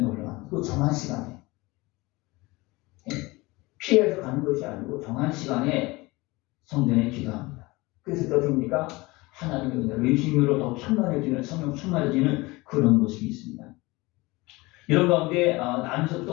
올라갑니다. 그 정한 시간에 피해서 가는 것이 아니고 정한 시간에 성전에 기도합니다. 그래서 어떻습니까? 하나님의 은혜로 예수님으로 더 충만해지는, 성령 충만해지는 그런 모습이 있습니다. 이런 가운데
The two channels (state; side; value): quieter; right; 22.4 dB